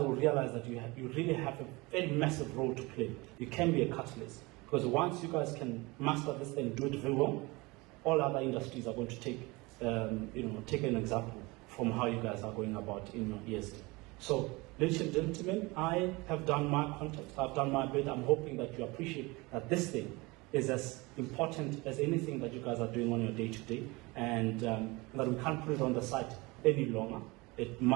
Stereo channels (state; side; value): quieter; left; 24.0 dB